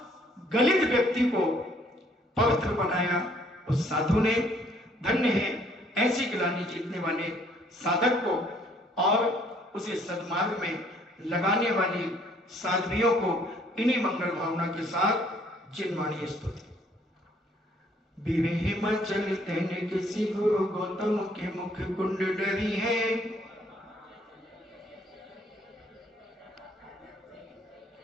गलित व्यक्ति को पवित्र बनाया उस साधु ने। धन्य है ऐसी गिलानी जीतने वाले साधक को और उसे सद्मार्ग में लगाने वाली साध्वियों को। इन्हीं मंगल भावना के साथ जिनवाणी स्तुति। विवेह मचल तेने किसी गुरु गौतम के मुख कुंड डरी है,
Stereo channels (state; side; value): normal; both; correlation 0.63